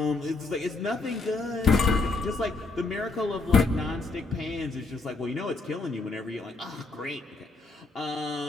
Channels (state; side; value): quieter; right; 3.7 dB